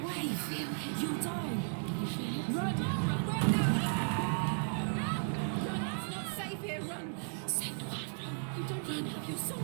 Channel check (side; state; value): left; silent; 54 dB below the other